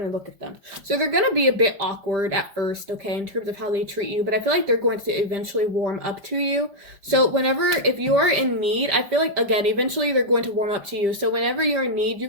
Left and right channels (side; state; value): left; late; 5.2 ms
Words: to look at them. So they're going to be a bit awkward at first, okay, in terms of how they treat you. But I feel like they're going to eventually warm up to you. So if you are in need, I feel like, again, eventually they're going to warm up to you. So whenever you're in need, you